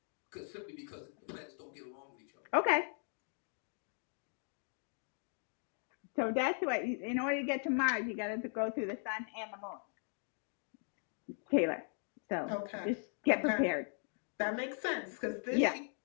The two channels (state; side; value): silent; right; 52 dB below the other